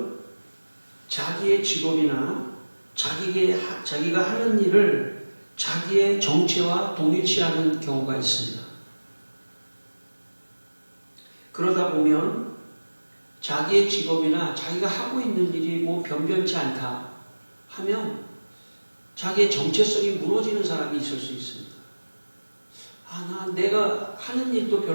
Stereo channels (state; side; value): inverted; both; correlation -1.00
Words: 자기의 직업이나 자기가 하는 일을 자기의 정체와 동일시하는 경우가 있습니다. 그러다 보면 자기의 직업이나 자기가 하고 있는 일이 뭐 변변치 않다 하면 자기의 정체성이 무너지는 사람이 있을 수 있습니다. 내가 하는 일도